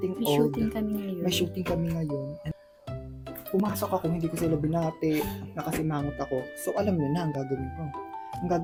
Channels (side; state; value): both; identical; correlation 1.00